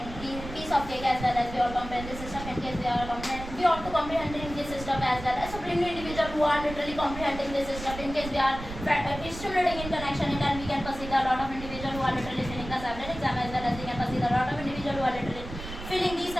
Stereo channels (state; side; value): noise; right; rumble, 11 dB below the sound